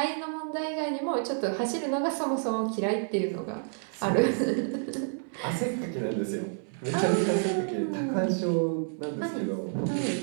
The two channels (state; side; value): silent; left; 58 dB below the other